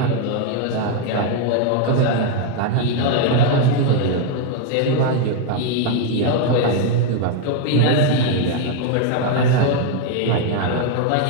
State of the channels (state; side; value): different; both; correlation 0.01